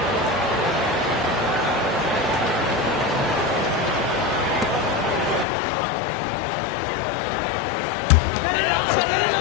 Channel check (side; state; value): right; drops out; at 5.5 s